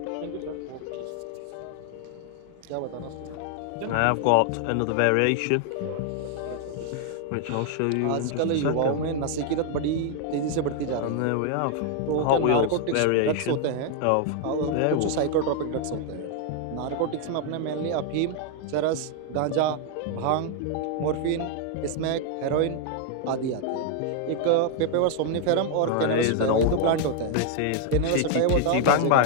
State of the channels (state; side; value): different; both; correlation 0.00